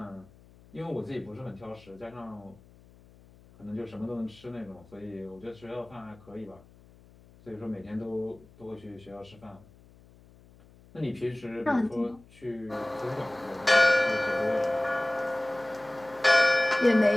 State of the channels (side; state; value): left; noise; hum, 25 dB below the sound